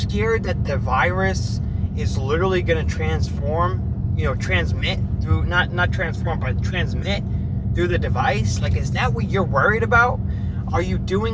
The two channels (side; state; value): both; identical; correlation 1.00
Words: that the virus is literally going to transmit through, not transform, but transmit through the device? Like, is that what you're worried about? Are you